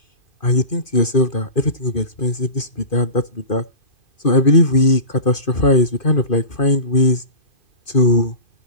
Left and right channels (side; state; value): right; late; 2.5 ms